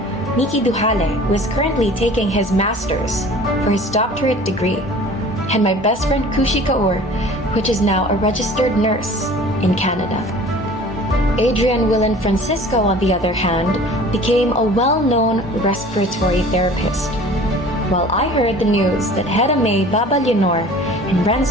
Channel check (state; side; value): normal; both; correlation 0.45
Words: Miki Duhale, who is currently taking his master's for his doctorate degree, and my best friend Kushi Kaur, which is now a registered nurse in Canada. Adrian Willen Francisco, on the other hand, became a well-known respiratory therapist. While I heard the news that Hera May Baba Leonor and